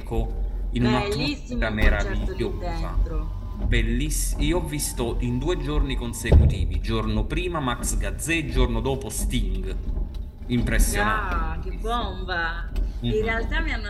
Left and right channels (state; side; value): identical; both; correlation 1.00